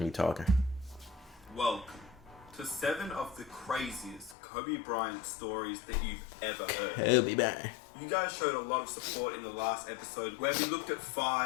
me talking. Welcome to 7 of the craziest Kobe Bryant stories that you've ever heard. Kobe Bryant. You guys showed a lot of support in the last episode where we looked at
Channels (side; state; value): right; drops out; at 4.4 s